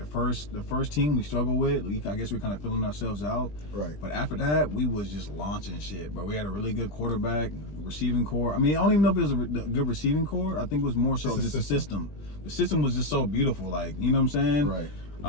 first team we struggled with, I guess we're kind of filling ourselves out. Right. But after that, we was just launching shit, bro. We had a really good quarterback, receiving core. I mean, I don't even know if it was a good receiving core. I think it was more so just the system. The system was just so beautiful, like, you know what I'm saying? Right.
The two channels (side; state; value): right; late; 20 ms